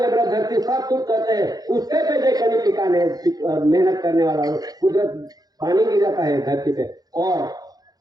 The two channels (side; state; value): left; late; 0.19 ms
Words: धरती साफ सुथ करते हैं, उसके पे जो कनी पिकाने मेहनत करने वाला कुदरत पानी गिराता है धरती पे और